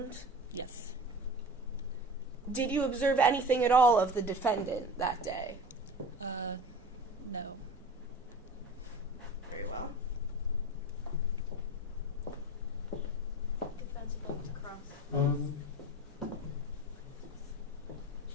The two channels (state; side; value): normal; both; correlation 0.36